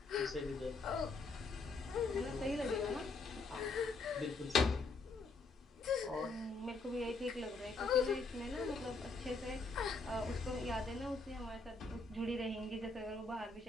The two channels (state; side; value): quieter; right; 3.7 dB